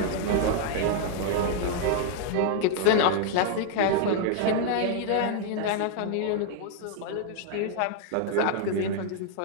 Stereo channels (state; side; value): different; both; correlation 0.00